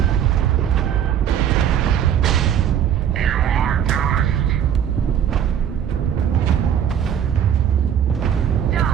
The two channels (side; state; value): left; quieter; 9.2 dB